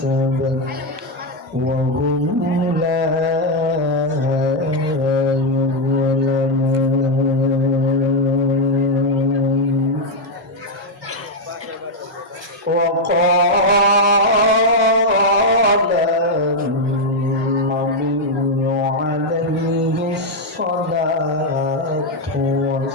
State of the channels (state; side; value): normal; both; correlation 0.01